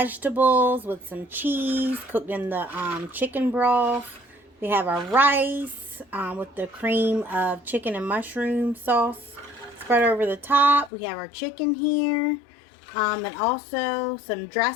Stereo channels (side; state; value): right; drops out; at 10.9 s